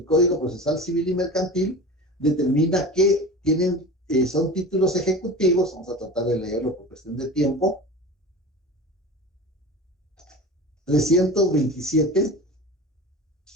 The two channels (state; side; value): normal; both; correlation 0.34